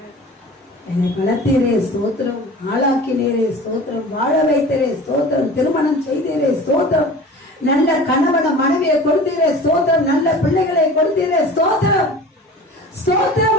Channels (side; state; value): both; normal; correlation 0.39